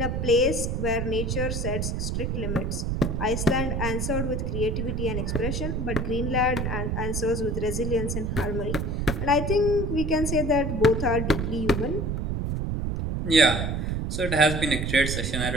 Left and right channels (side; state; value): right; noise; rumble, 1 dB below the sound